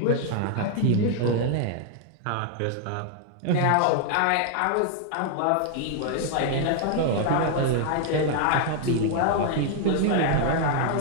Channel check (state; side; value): different; both; correlation 0.00